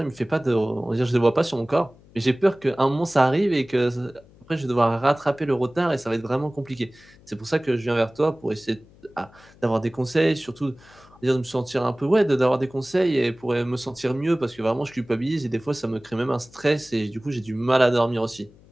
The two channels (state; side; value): noise; left; hum, 26 dB below the sound